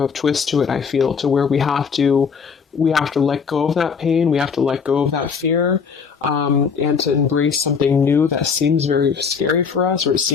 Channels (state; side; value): quieter; right; 6.0 dB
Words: of twist to it, I feel, to where we have to let go of that pain, we have to let go of that fear, and to embrace something new that seems very scary for us, or it